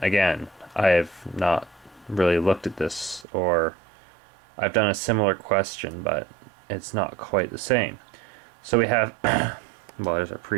Again, I have not really looked at this, or I've done a similar question, but it's not quite the same. So we have, well, there's our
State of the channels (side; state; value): left; drops out; at 3.2 s